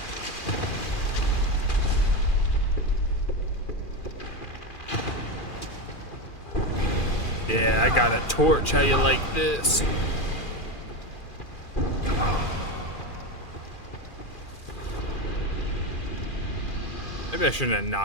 Yeah, I got a torch. How you like this? Maybe I shouldn't have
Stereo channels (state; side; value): late; right; 2.4 ms